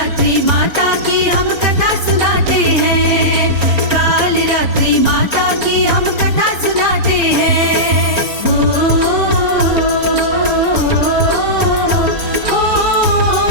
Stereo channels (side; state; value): left; late; 4.3 ms